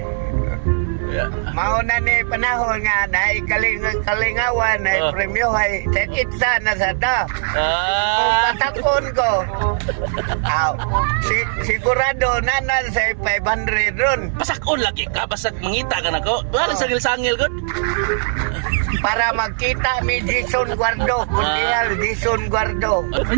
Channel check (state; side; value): silent; left; digital silence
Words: Ya. Mauna ni panahon nga na kalingawan na Oh. premyo ay itsa na sa da. Kung Ah. patakon ko, sigurado nanan sa 500 ron Pasakon lagi ka basag mangita ka nako. Wala sa sangil gud. para magkita mi Jason Guardo. Kunyal Jason Guardo.